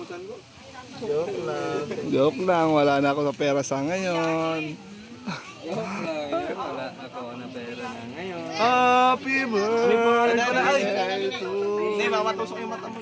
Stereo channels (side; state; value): both; identical; correlation 1.00